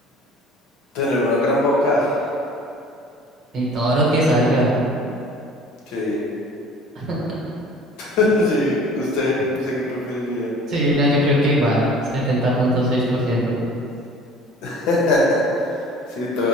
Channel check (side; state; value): both; normal; correlation 0.46